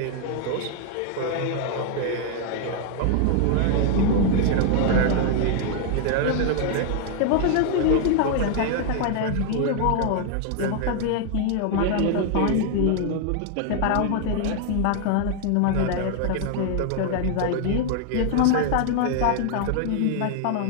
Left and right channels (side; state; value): both; different; correlation 0.00